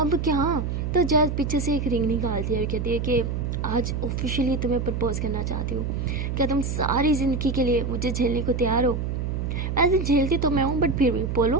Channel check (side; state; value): right; noise; hum, 2 dB below the sound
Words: क्या? तो जैज पीछे से एक रिंग निकालती है और कहती है कि आज ऑफिशियली तुम्हें प्रपोज करना चाहती हूँ। क्या तुम सारी ज़िंदगी के लिए मुझे झेलने को तैयार हो? ऐसे झेलती तो मैं हूँ, बट फिर भी